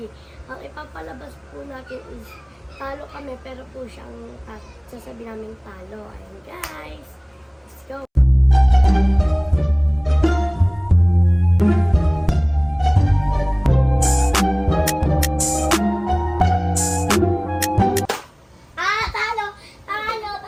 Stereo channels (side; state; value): both; identical; correlation 1.00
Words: Ang ipapalabas po natin is talo kami, pero po siyang sasabi namin talo. Ayun guys, let's go!